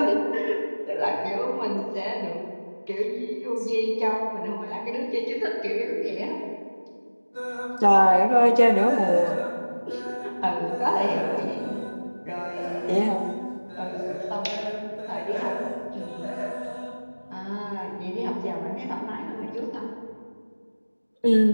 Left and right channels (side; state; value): both; inverted; correlation -1.00